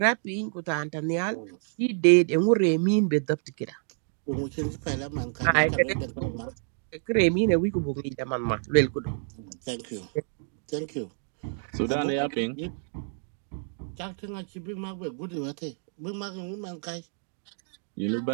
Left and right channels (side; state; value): left; silent; 59 dB below the other